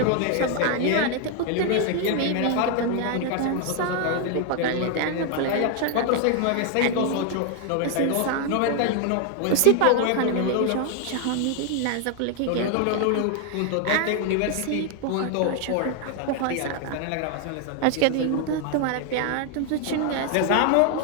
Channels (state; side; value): different; both; correlation 0.00